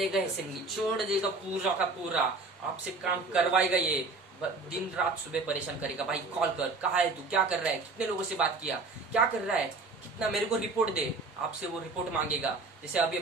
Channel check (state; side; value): quieter; left; 3.6 dB